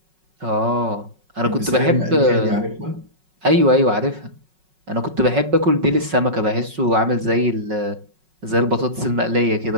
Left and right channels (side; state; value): left; late; 5.4 ms